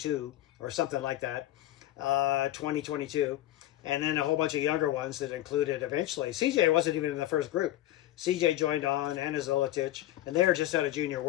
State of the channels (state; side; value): quieter; right; 14.3 dB